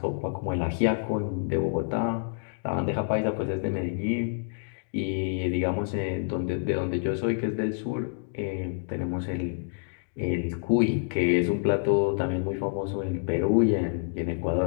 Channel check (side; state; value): right; silent; digital silence